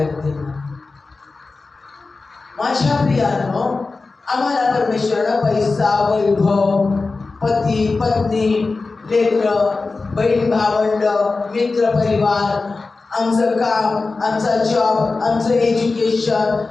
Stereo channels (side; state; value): right; quieter; 3.8 dB